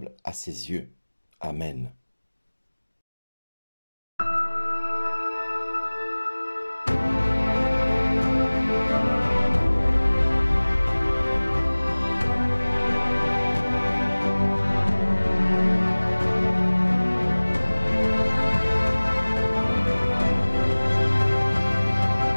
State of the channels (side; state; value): both; inverted; correlation -1.00